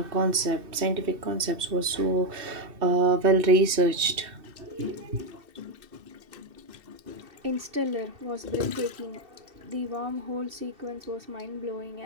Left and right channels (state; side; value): late; left; 2.6 ms